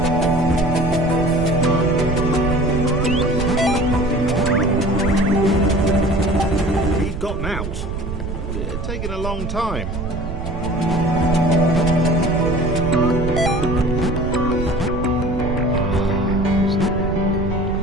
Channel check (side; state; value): right; noise; rumble, 5 dB below the sound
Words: He'd gotten out. It had taken a long time.